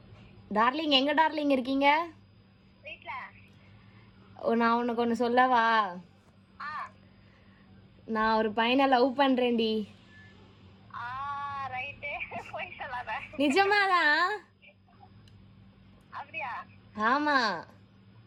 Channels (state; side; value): identical; both; correlation 1.00